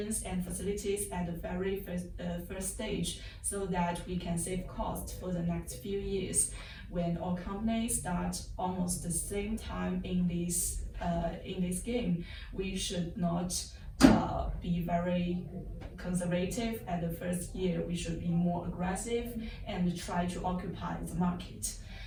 and facilities at the very first stage so that we can save cost for the next few years. When all companies start almost the same time in this game, we should not be very conservative at the first year. We should be more aggressive and try to occupy the market.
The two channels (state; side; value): identical; both; correlation 1.00